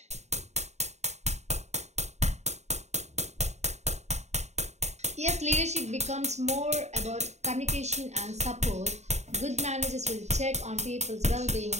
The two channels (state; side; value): late; left; 0.32 ms